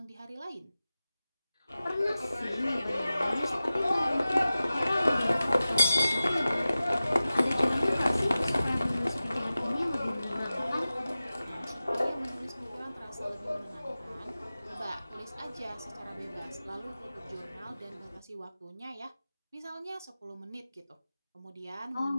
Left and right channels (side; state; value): both; inverted; correlation -0.95